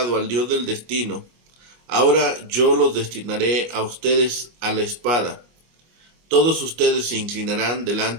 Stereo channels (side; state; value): left; late; 25 ms